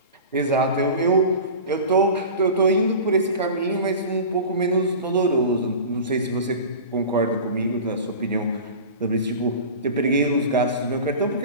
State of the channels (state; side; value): inverted; both; correlation -0.34